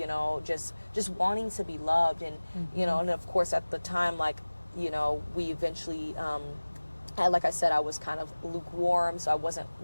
just wanting to be loved. And, and of course at the time, like, we eventually, like I said, I was kind of lukewarm, so I wasn't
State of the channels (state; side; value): inverted; both; correlation -1.00